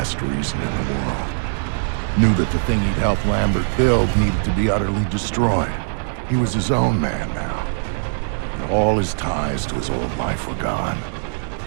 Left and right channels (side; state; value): left; silent; 65 dB below the other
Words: reason in the world. Knew that the thing he'd helped Lambert build needed to be utterly destroyed. He was his own man now. And all his ties to his old life were gone.